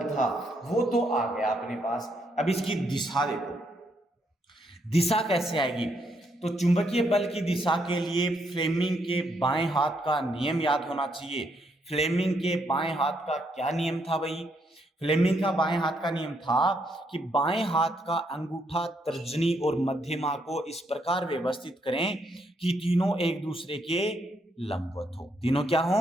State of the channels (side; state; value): both; normal; correlation 0.75